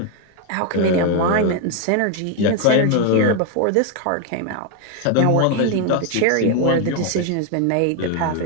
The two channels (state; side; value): different; both; correlation 0.01